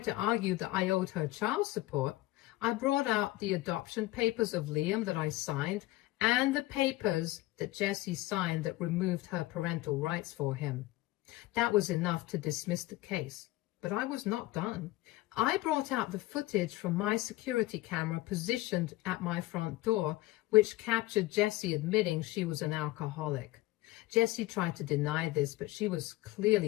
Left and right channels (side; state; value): right; quieter; 18.3 dB